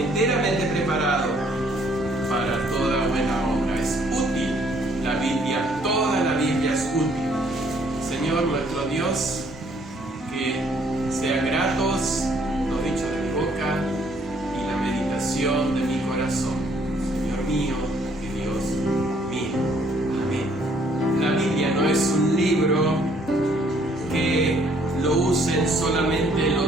preparado para toda buena obra. Es útil la Biblia, toda la Biblia es útil. Señor nuestro Dios, que sean gratos los dichos de mi boca y la meditación de mi corazón. Señor mío y Dios mío. Amén. La Biblia no es un libro que lo usen solamente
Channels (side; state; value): both; normal; correlation 0.64